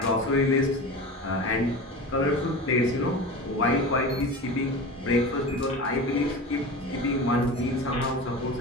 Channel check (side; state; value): both; normal; correlation 0.30